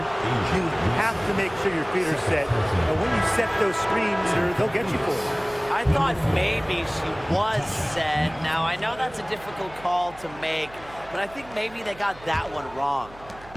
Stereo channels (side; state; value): right; noise; hum, 21 dB below the sound